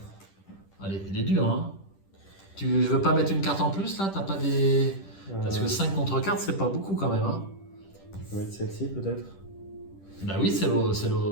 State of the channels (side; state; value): right; late; 10 ms